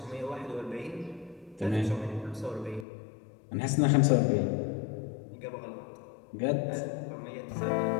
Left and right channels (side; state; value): right; drops out; at 2.9 s